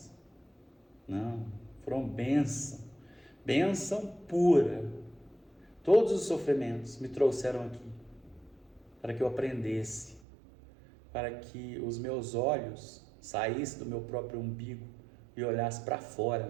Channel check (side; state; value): left; drops out; at 10.2 s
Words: Não, foram bênção. Bênção pura. Todos os sofrimentos me trouxeram aqui para que eu aprendesse, para que os meus olhos saíssem do meu próprio umbigo e olhassem para